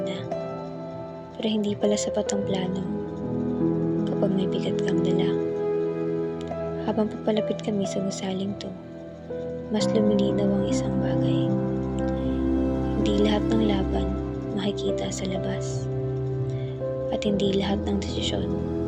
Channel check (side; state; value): both; identical; correlation 1.00